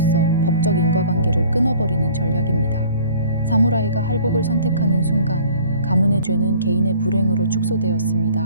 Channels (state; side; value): inverted; both; correlation -0.50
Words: 법적 인과관계를 끊어버리는 전략입니다. 사무라이가 할복을 선택하는 순간 가문의 죄는 개인의 불행으로